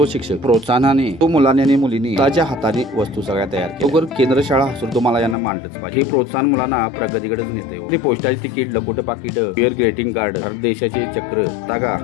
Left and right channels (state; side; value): drops out; right; at 5.4 s